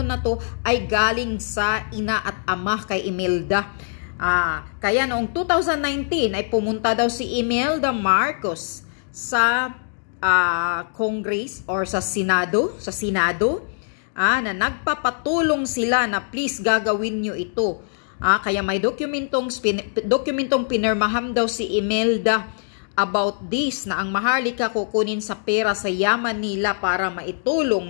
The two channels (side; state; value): right; silent; digital silence